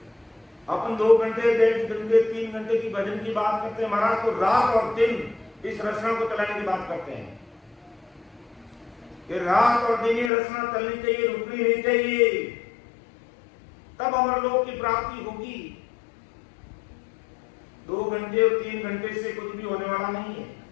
अपन 2 घंटे 1.5 घंटे 3 घंटे की भजन की बात करते हैं महाराज, तो रात और दिन इस रचना को चलाने की बात करते हैं कि रात और दिन ये रचना चलनी चाहिए, रुकनी नहीं चाहिए, तब अमरलोक की प्राप्ति होगी। 2 घंटे और 3 घंटे से कुछ भी होने वाला नहीं है।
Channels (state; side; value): drops out; right; at 10.3 s